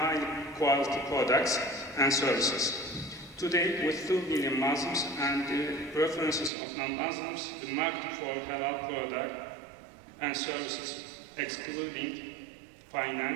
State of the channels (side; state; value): left; drops out; at 6.5 s